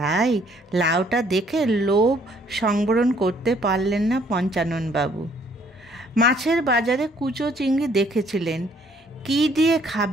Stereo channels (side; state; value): both; normal; correlation 0.63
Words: লাউটা দেখে লোভ সংবরণ করতে পারলেন না পঞ্চাননবাবু। মাছের বাজারে কুচো চিংড়ি দেখেছিলেন। কী দিয়ে